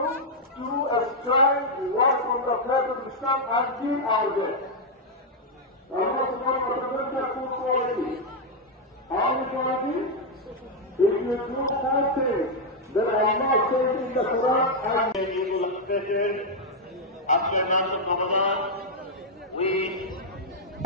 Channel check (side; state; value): both; normal; correlation -0.02